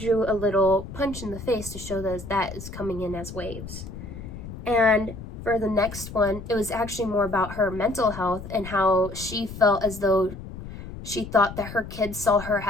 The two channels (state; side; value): noise; left; rumble, 11 dB below the sound